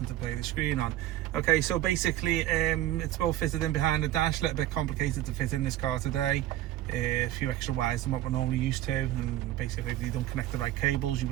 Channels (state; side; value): quieter; left; 13.8 dB